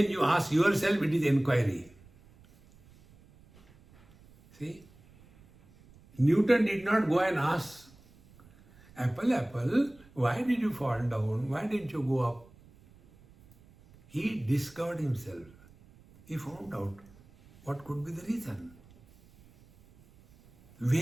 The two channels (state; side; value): noise; right; rumble, 26 dB below the sound